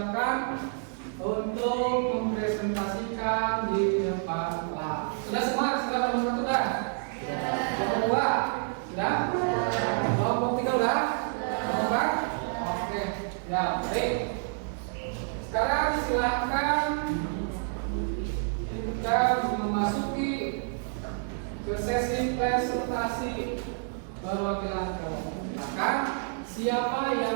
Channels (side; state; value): left; silent; 59 dB below the other